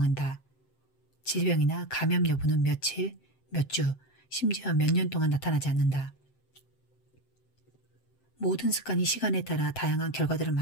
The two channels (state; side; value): late; right; 7.7 ms